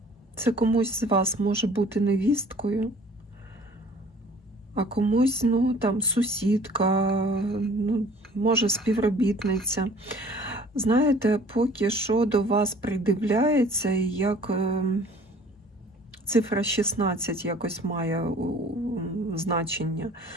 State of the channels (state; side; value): normal; both; correlation 0.51